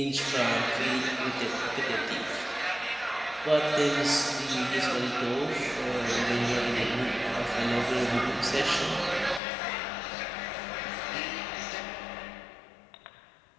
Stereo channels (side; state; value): right; drops out; at 9.4 s